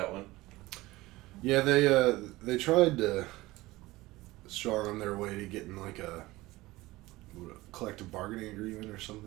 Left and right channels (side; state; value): left; quieter; 19.3 dB